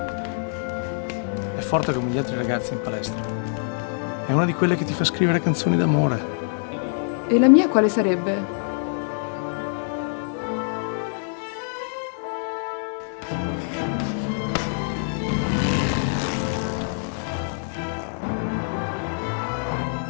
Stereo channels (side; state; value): right; silent; digital silence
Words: È forte come gli altri ragazzi in palestra. È una di quelle che ti fa scrivere canzoni d'amore. E la mia quale sarebbe?